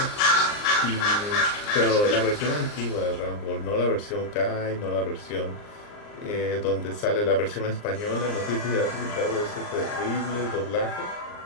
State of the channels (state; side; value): late; right; 39 ms